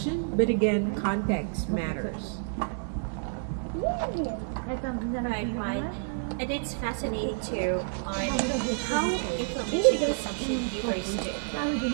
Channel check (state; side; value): silent; left; digital silence